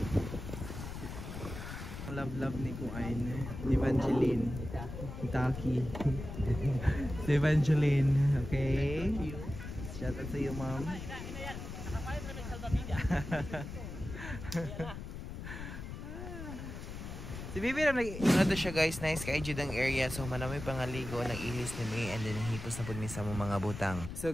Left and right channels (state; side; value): noise; left; rumble, 9 dB below the sound